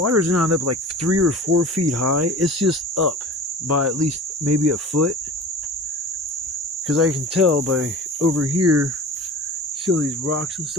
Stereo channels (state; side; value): normal; both; correlation 0.38